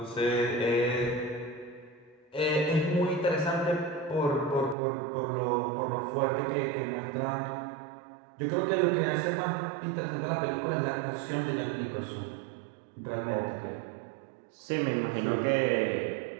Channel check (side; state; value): left; drops out; at 4.8 s